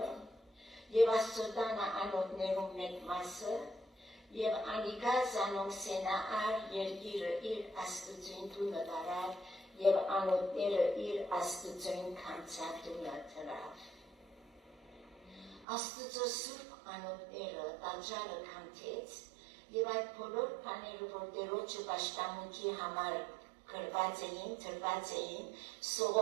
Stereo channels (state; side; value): drops out; left; at 15.7 s